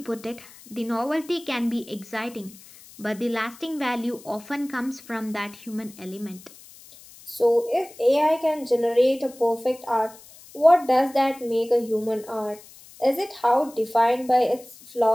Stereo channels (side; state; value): left; noise; hiss, 21 dB below the sound